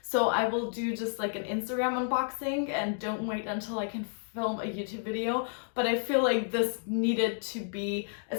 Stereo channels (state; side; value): silent; right; 57 dB below the other